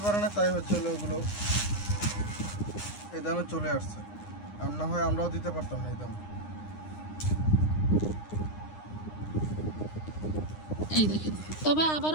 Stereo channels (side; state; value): right; late; 9.7 ms